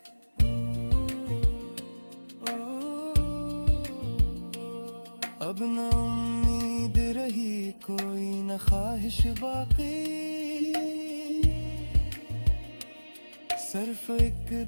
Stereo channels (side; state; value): both; inverted; correlation -1.00